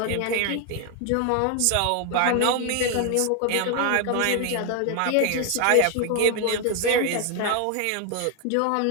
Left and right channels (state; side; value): different; both; correlation 0.00